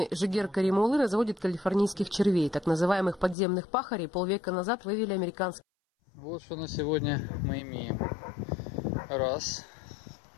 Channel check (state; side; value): drops out; right; at 3.4 s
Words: Жигер Каримулы разводит калифорнийских червей, так называемых подземных пахарей. Полвека назад вывели американские. Вот что на сегодня мы имеем. Раз.